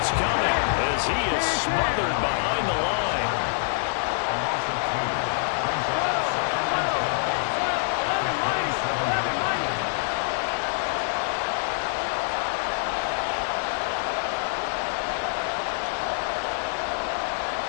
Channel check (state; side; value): silent; right; digital silence